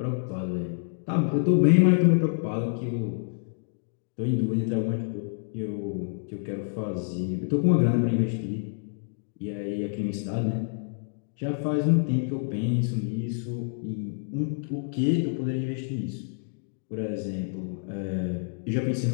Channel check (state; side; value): silent; right; digital silence